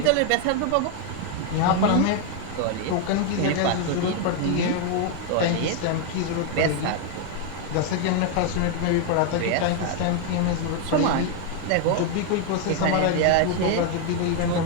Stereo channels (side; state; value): both; different; correlation 0.01